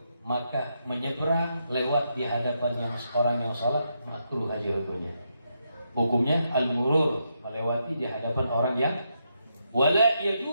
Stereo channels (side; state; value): both; inverted; correlation -0.81